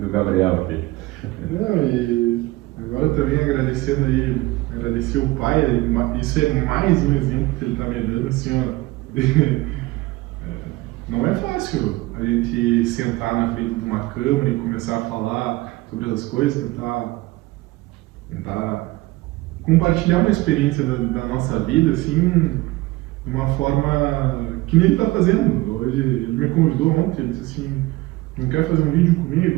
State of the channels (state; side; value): quieter; left; 19.6 dB